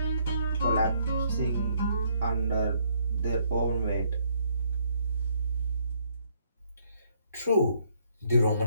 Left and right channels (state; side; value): inverted; both; correlation -0.69